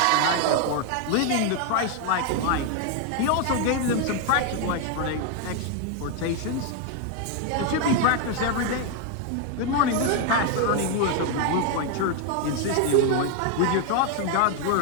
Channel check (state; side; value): different; both; correlation 0.01